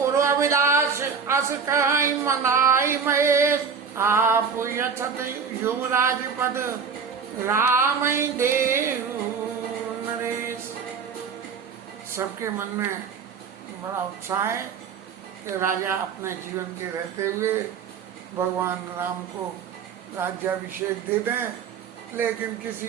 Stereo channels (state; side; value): quieter; left; 6.2 dB